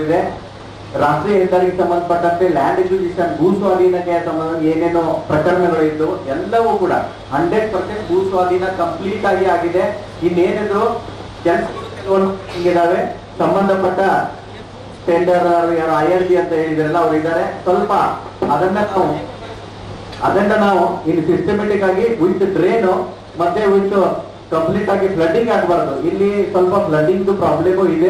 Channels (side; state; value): both; identical; correlation 1.00